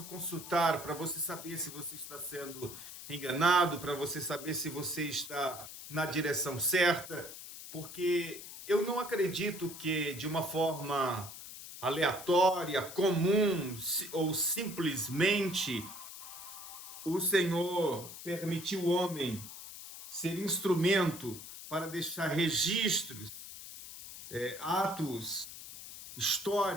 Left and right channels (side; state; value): left; noise; hiss, 12 dB below the sound